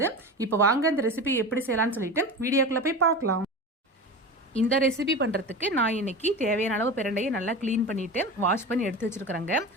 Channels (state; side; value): normal; both; correlation 0.28